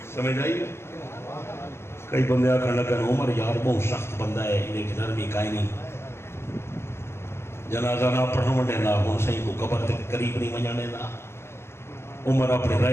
سمجھ آئی کئی بندے آکھن لگن عمر یار بہت سخت بندہ ہے انہیں کی نرمی کائی نہیں جنازہ نہ پڑھاؤں دینا ہوں صحیح کو قبر تے قریب نہیں ونجانے دا. عمر اپنے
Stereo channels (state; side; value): late; right; 0.12 ms